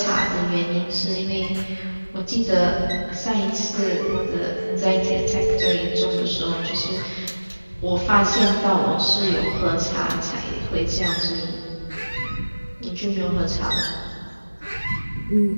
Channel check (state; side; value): inverted; both; correlation -1.00